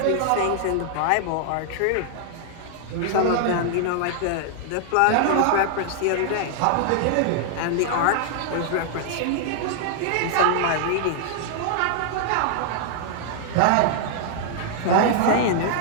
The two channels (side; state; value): both; different; correlation -0.01